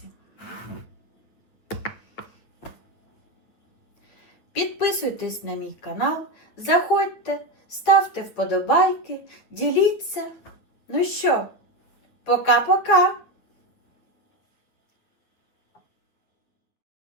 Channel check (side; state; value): right; late; 9.4 ms